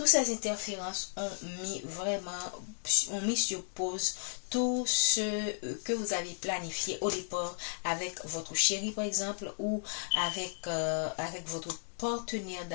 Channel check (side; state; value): right; silent; digital silence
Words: ces interférences ont mis sur pause tout ce que vous avez planifié au départ avec votre chéri, par exemple, ou avec votre partenaire